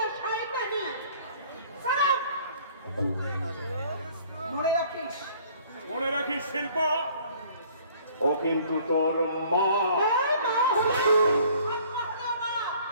সাহেবানি, মনে রাখিস শিল্পা, ও কিন্তু তোর মা।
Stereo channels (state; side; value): inverted; both; correlation -0.55